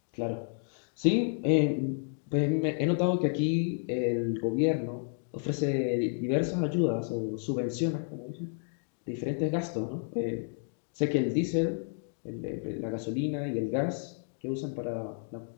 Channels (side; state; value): right; silent; digital silence